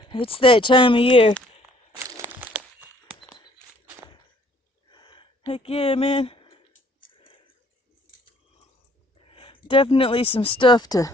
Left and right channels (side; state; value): both; normal; correlation 0.60